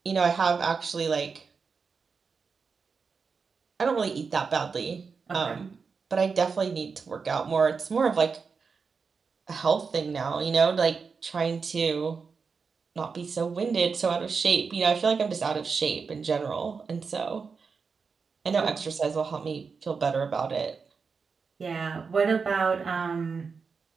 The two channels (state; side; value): quieter; left; 5.2 dB